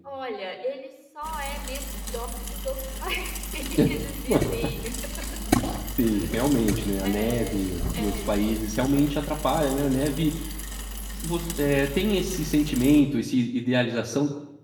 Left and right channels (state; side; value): identical; both; correlation 1.00